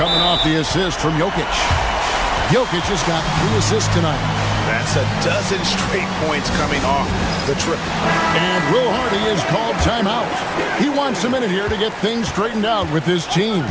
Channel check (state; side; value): identical; both; correlation 1.00